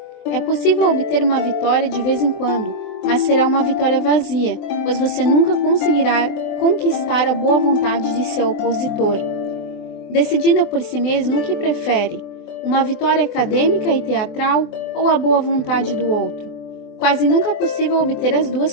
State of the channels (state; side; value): late; right; 24 ms